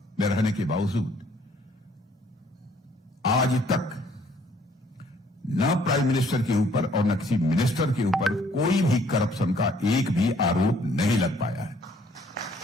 में रहने के बावजूद आज तक न प्राइम मिनिस्टर के ऊपर और न किसी मिनिस्टर के ऊपर कोई भी करप्शन का एक भी आरोप नहीं लग पाया है।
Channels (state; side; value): normal; both; correlation 0.62